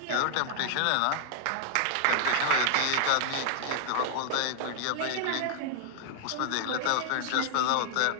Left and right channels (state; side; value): different; both; correlation 0.00